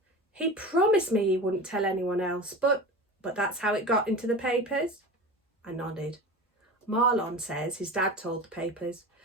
He promised me he wouldn't tell anyone else, but that's how it got into the papers? I nodded. Marlon says his dad told the papers,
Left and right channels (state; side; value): normal; both; correlation 0.31